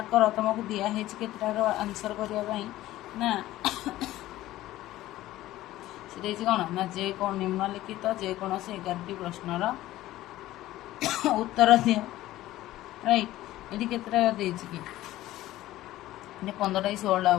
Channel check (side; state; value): right; quieter; 15.5 dB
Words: କର, ତୁମକୁ ଦିଆହେଇଛି କେତେଟାର ଆନ୍ସର କରିବା ପାଇଁ ନା ସେ ଦେଇଛି କ'ଣ ନା ନିମ୍ନଲିଖିତ ଯେକୌଣସି 11ଟି ପ୍ରଶ୍ନର ଉତ୍ତର ଦିଅ, ରାଇଟ୍। ଏଠି କେତେଟା ଦେଇଛି କି, ଏଠି 15ଟା କି 16ଟା